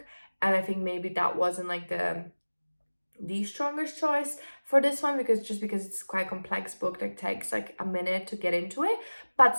and I think maybe that wasn't like the strongest choice for this one because it's quite complex book that takes like a minute to get into it, but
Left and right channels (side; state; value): both; inverted; correlation -1.00